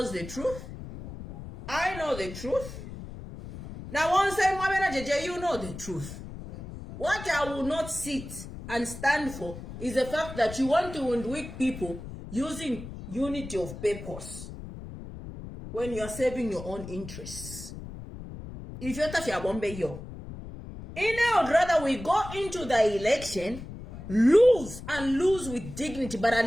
the truth. I know the truth. Now once you know the truth. What I will not sit and stand for is the fact that you want to weak people using unity of purpose when you are serving your own interests. If you're touching a bombe yo, I would rather we go into the election, lose with dignity, but at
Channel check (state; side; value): noise; left; rumble, 12 dB below the sound